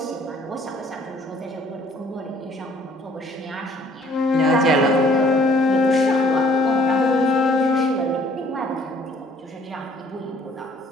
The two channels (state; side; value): normal; both; correlation 0.60